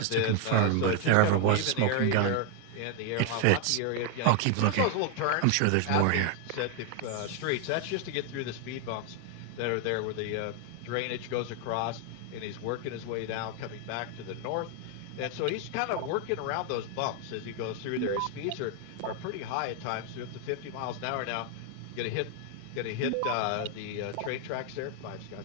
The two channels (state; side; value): different; both; correlation 0.01